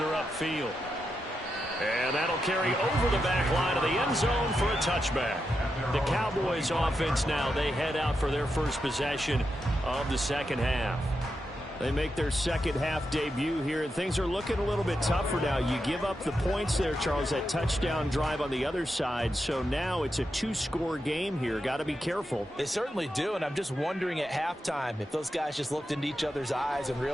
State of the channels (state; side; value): normal; both; correlation 0.87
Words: upfield. And that'll carry over the back line of the end zone for a touchback. The Cowboys offense now, they head out for their first possession of the second half. They make their second half debut here, and things are looking a little bit tougher now. You give up the points there, Charles, that touchdown drive on the other side. So now it's a two-score game here. Got to be careful. They certainly do, and I'm just wondering at halftime if those guys just looked into each other's eyes and